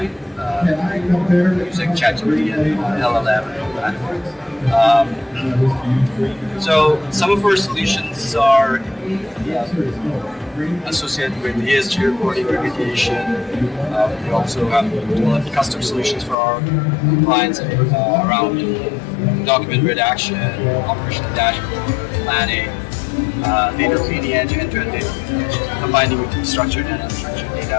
using ChatGPT and LLM and all that. So some of our solutions are associated with ESG reporting, remediation. We also have developed custom solutions for our clients around document redaction, operational dashboard, planning, data lineage, end-to-end data lineage, combining with structured and unstructured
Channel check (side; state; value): right; drops out; at 16.4 s